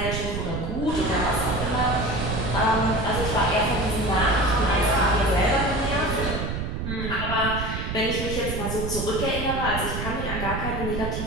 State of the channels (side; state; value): right; noise; rumble, 4 dB below the sound